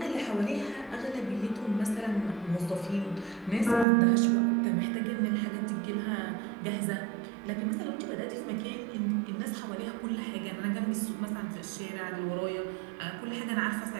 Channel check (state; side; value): drops out; left; at 3.9 s